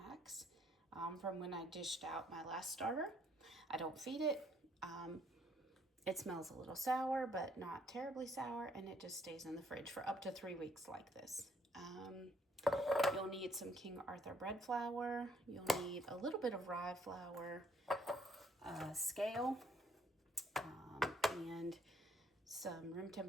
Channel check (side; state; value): both; normal; correlation 0.66